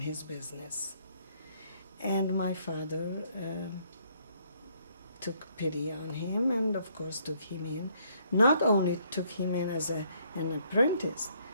business. And my father took pity on him and of course took him in. Not only took him in as an apprentice,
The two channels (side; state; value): both; inverted; correlation -0.68